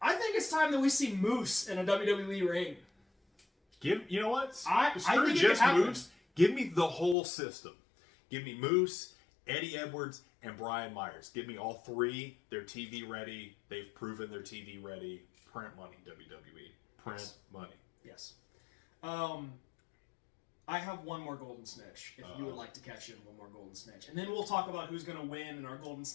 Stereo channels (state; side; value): drops out; right; at 7.2 s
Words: I think it's time that we see Moose in a WWE ring. You know what? I Screw think it could just happen. Moose. Give me the whole system. Give me Moose, Eddie Edwards, and Brian Myers. Give me all 3. They're TV ready. They've proven they're TV ready. Print money, WWE. Print money. Yes. I have one more Golden Snitch, if you would like to catch in one more Golden Snitch. And then we'll talk about who's going to win and our Golden